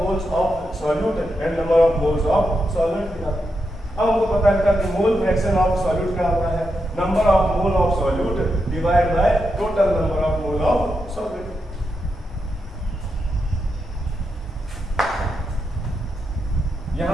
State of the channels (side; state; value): both; normal; correlation 0.85